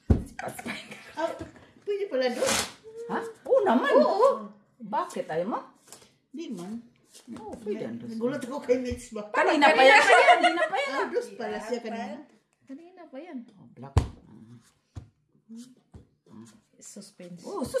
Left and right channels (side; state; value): both; identical; correlation 1.00